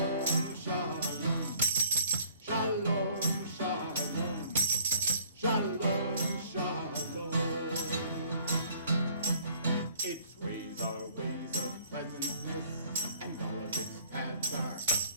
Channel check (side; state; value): both; inverted; correlation -0.57